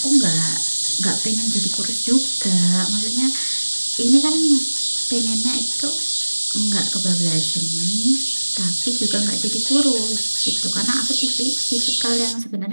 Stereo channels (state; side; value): inverted; both; correlation -1.00